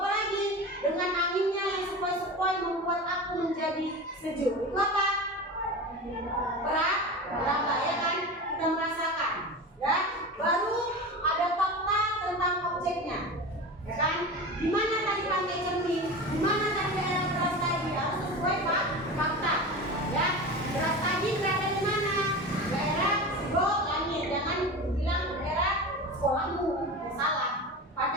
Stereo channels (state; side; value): normal; both; correlation 0.29